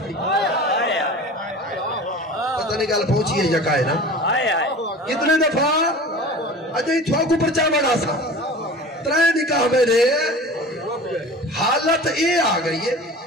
پتہ نہیں گل پہنچی ہے یکا ہے نا کتنے دفعہ اچھا ہی تھوا کو پرچامن آسا ترائے نکاح میں نے حالت اے آ گئی ہے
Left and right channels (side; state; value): both; normal; correlation 0.38